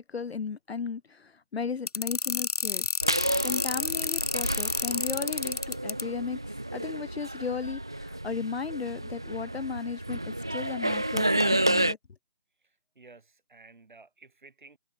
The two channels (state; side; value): inverted; both; correlation -0.47